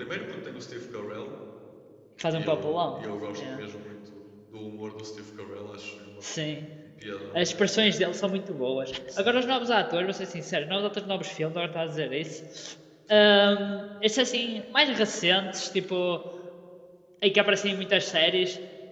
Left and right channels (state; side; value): identical; both; correlation 1.00